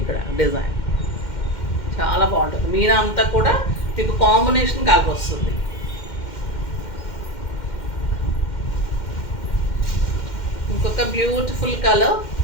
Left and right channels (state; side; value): late; right; 2.1 ms